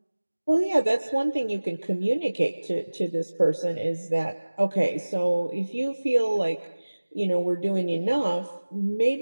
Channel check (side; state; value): both; inverted; correlation -1.00